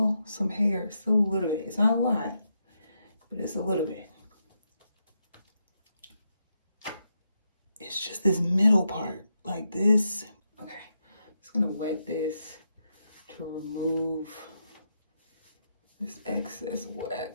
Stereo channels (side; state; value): both; inverted; correlation -0.83